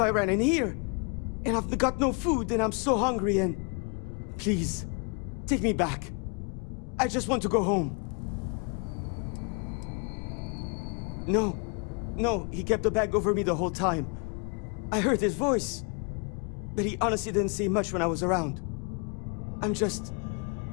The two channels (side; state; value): right; quieter; 36.3 dB